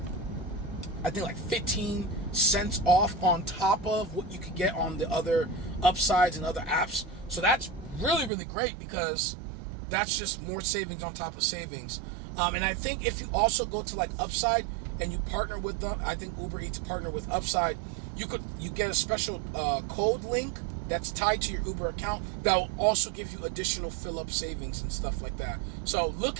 15 cents off on top of what you could get on the other Upsides and other apps. So that's really, really great, because that's just more savings on top of savings. And I think if you also go to like Upside and you partner with them, I think Uber Eats partner with Upside, you get a special code link that's tied to your Uber account that will also give you additional fill-up savings and stuff like that. So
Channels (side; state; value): left; drops out; at 8.3 s